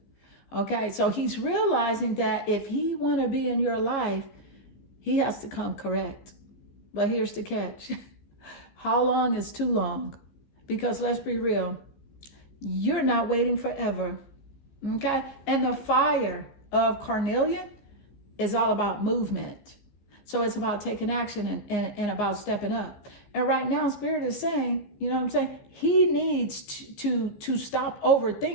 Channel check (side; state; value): right; late; 14 ms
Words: Okay, so he's realizing that if he want to be in your life, he has to come correct. But here's the catch. How long is too long? Because let's be real, you're not waiting forever. Okay, and the fire of carnelian is all about movement. So it's about taking action and about stepping up. And right now, Spirit is saying, you know what I'm saying? He needs to stop